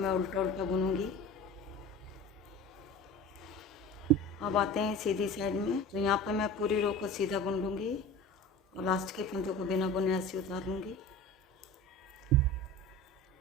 उल्टा उल्टा बुनूंगी। अब आते हैं सीधी साइड में। तो यहाँ पे मैं पूरी रो को सीधा बुन लूँगी और लास्ट के फंदे को बिना बुने ऐसे उतार लूँगी।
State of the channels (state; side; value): normal; both; correlation 0.35